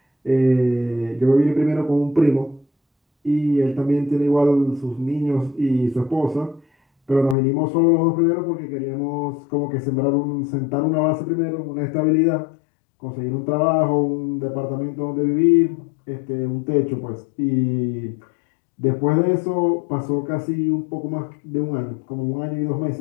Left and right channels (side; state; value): right; drops out; at 7.4 s